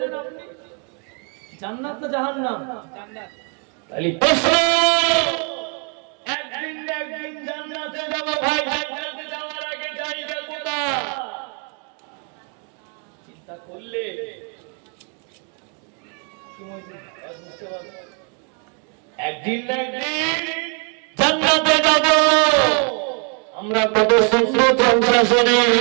আপনি, জান্নাত না জাহান্নাম? জান্নাত। তাহলে প্রশ্ন, একদিন না একদিন জান্নাতে যাব ভাই, জান্নাতে যাওয়ার আগে জায়গা কোথায় চিন্তা করলে কি মনে বুঝতে পারবেন? একদিন না একদিন জান্নাতে যাব। আমরা কত সুন্দর জলসা শুনি,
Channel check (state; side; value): quieter; left; 39.0 dB